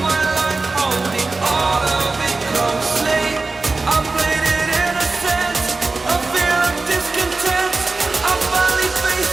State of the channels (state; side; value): quieter; left; 3.6 dB